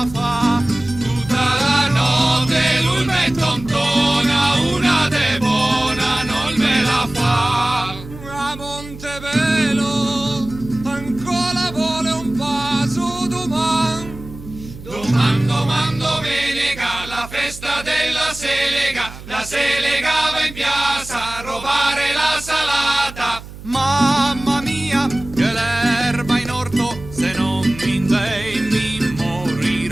fa. Tutta la notte lui me tontona, una de buona non me la fa. A Montevelo ancora vuole un passo domani. Doman domenica la festa della Selega, la Selega va in piazza a rubare la salata. Mamma mia, che l'erba in orto, se non mi dai mi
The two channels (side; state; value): right; noise; hum, 15 dB below the sound